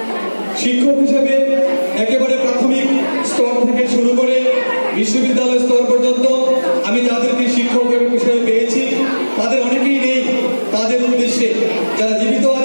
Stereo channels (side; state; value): both; inverted; correlation -1.00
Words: শিক্ষক হিসেবে একেবারে প্রাথমিক স্তর থেকে শুরু করে বিশ্ববিদ্যালয় স্তর পর্যন্ত আমি যাদেরকে শিক্ষক হিসেবে পেয়েছি তাদের অনেকেই নেই। তাদের উদ্দেশ্যে যারা জীবিত